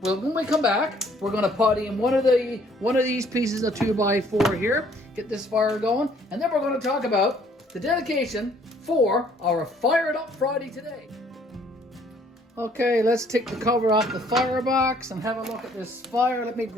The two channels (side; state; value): both; normal; correlation 0.61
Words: well, when we come back, we're going to put in one of these pieces of 2x4 here. Get this fire going. And then we're going to talk about the dedication for our Fired Up Friday today. Okay, let's take the cover off the firebox and have a look at this fire. Let me